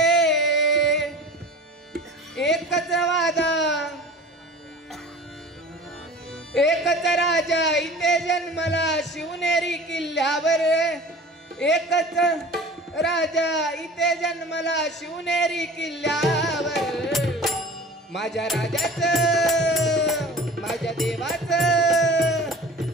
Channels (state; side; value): normal; both; correlation 0.40